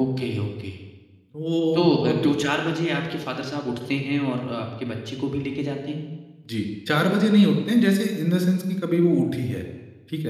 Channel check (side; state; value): both; identical; correlation 1.00